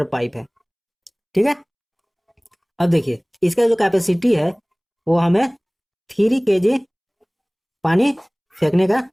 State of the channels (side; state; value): both; identical; correlation 1.00